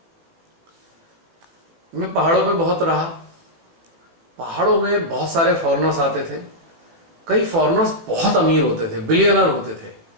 मैं पहाड़ों पे बहुत रहा। पहाड़ों में बहुत सारे फॉरेनर्स आते थे। कई फॉरेनर्स बहुत अमीर होते थे, बिलियनर होते थे,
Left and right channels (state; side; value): late; left; 18 ms